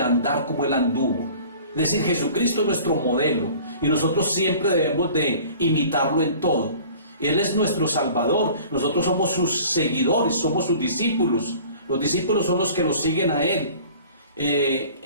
andar como Él anduvo. Es decir, Jesucristo es nuestro modelo y nosotros siempre debemos de imitarlo en todo. Él es nuestro Salvador. Nosotros somos sus seguidores, somos sus discípulos. Los discípulos son los que lo siguen a Él.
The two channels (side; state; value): both; inverted; correlation -0.46